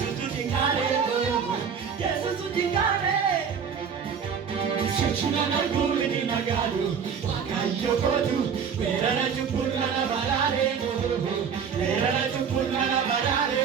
jikaare yesuutu jikaare shichira narkuuni nagaadu waaqayyo gootu weerara cunqursaa baraare weerara cunqursaa baraare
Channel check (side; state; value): left; quieter; 6.9 dB